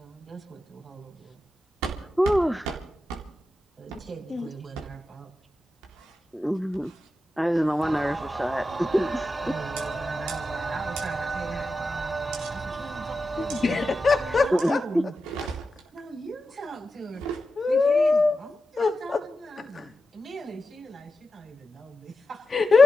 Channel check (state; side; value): normal; both; correlation 0.91